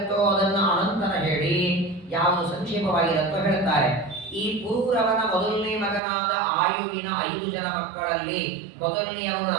ಅದನ್ನು ಅನಂತರ ಹೇಳಿ, ಯಾವುದು ಸಂಕ್ಷೇಪವಾಗಿರುತ್ತೋ ಹೇಳ್ತಾರೆ. ಈ ಪುರೂರವನ ಮೊದಲನೇ ಮಗನಾದ ಆಯುವಿನ 5 ಜನ ಮಕ್ಕಳಲ್ಲಿ ಮೊದಲನೆಯವನು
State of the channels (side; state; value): left; drops out; at 6.0 s